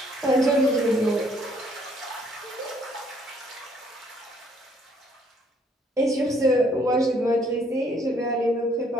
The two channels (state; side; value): normal; both; correlation 0.65